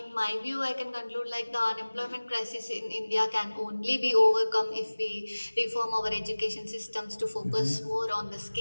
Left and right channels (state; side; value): inverted; both; correlation -1.00